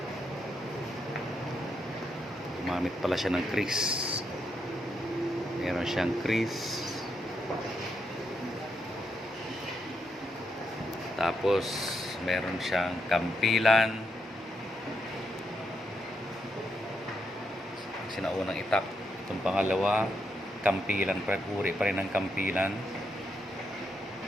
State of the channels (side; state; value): both; normal; correlation 0.81